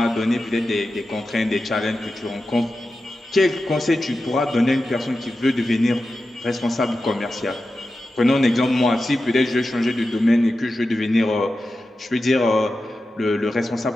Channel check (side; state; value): both; normal; correlation 0.92